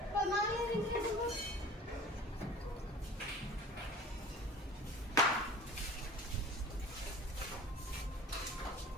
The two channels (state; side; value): normal; both; correlation 0.42